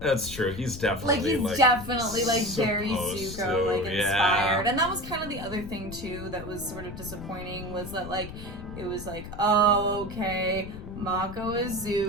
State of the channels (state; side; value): noise; left; rumble, 11 dB below the sound